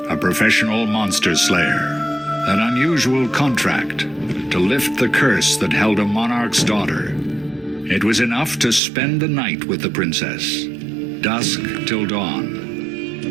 a professional monster slayer. An unusual contract to lift the curse that held a monarch's daughter. It was enough to spend the night with the princess, dusk till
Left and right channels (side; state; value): left; drops out; at 8.8 s